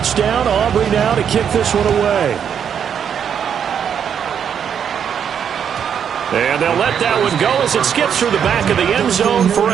Aubrey now to kick this one away. And they'll let that one go as it skips through the back of the end zone for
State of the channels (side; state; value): left; quieter; 8.1 dB